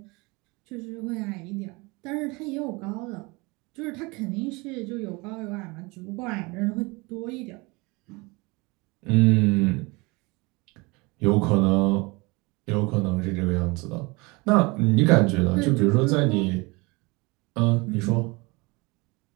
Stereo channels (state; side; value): quieter; left; 26.0 dB